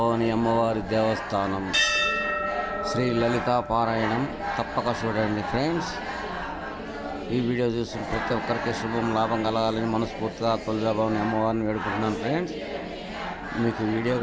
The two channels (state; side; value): identical; both; correlation 1.00